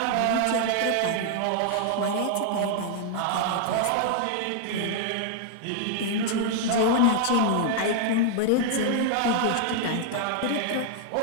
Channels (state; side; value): different; both; correlation 0.00